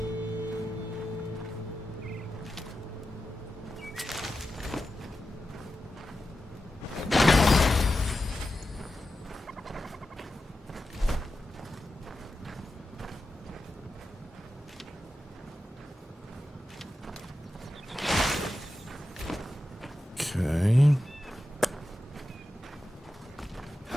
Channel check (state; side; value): normal; both; correlation 0.91